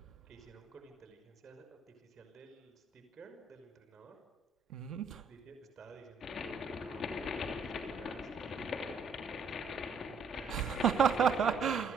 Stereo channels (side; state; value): left; quieter; 4.3 dB